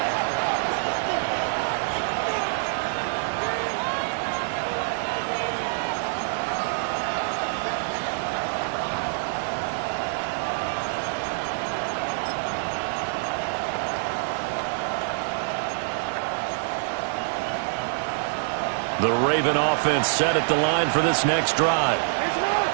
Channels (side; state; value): left; silent; digital silence